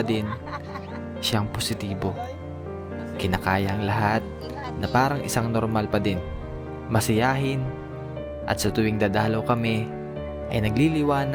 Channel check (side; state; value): both; identical; correlation 1.00